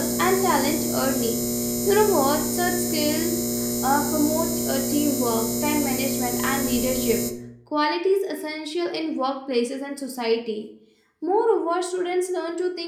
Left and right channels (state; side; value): identical; both; correlation 1.00